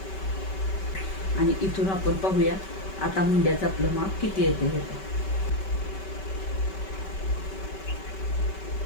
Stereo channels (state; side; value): late; right; 5.2 ms